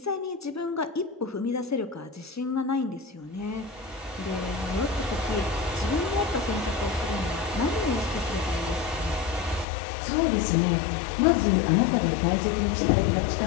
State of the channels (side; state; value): right; drops out; at 9.7 s